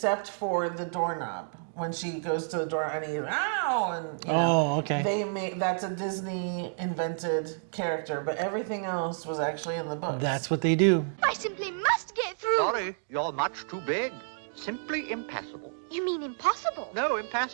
for the doorknob. When she goes to the door and he's, ow, and Oh, okay. That's a Disney invented character, but everything else was actually in the books. That's what they do. I simply must get through. Sorry, you're much too big. Simply impassable. You mean impossible? No,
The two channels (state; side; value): silent; left; digital silence